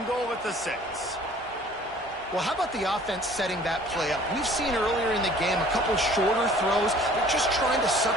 goal at the 6. Well, how about the offense setting that play up? We've seen earlier in the game a couple shorter throws. They're just trying to suck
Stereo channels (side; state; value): both; normal; correlation 0.52